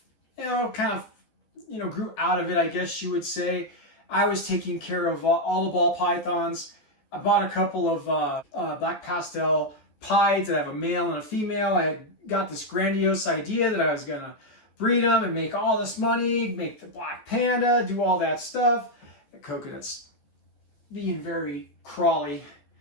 grew out of it, I guess you would say. I was taking care of all the ball pythons. I bought a couple of black pastel pieds. I have a male and a female. I had got this grandiose idea that I was going to breed them and make all this money, make the black panda, do all that stuff. The coconut's being very crawly.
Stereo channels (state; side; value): late; right; 14 ms